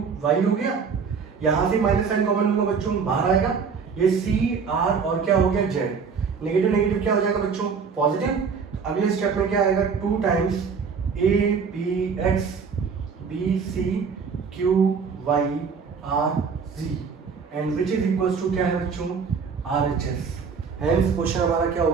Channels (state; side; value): quieter; left; 5.8 dB